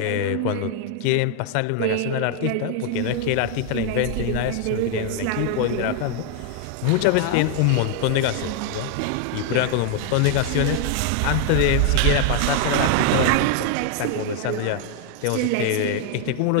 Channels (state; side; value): different; both; correlation 0.00